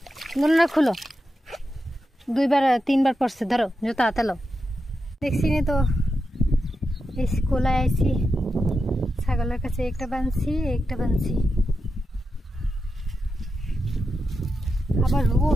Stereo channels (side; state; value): both; normal; correlation 0.88